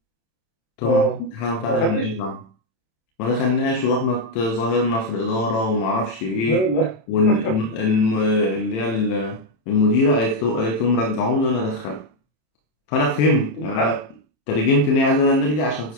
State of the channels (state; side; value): late; right; 27 ms